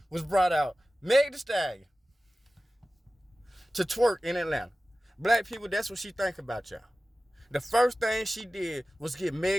was brought out Meg Thee Stallion to twerk in Atlanta. Black people, that's what she think about y'all. The first thing she did was get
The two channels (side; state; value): both; normal; correlation 0.96